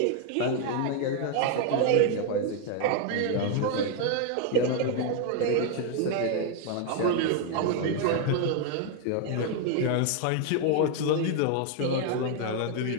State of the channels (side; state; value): both; different; correlation 0.01